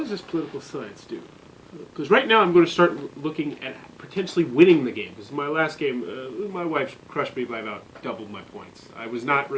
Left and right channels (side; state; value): both; identical; correlation 1.00